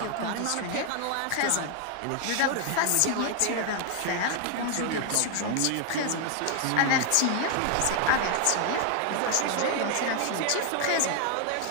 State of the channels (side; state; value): both; different; correlation 0.00